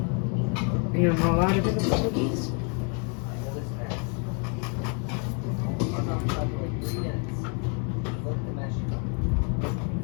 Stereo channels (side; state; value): right; quieter; 38.6 dB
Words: And you're not allowed to pick up the cookies.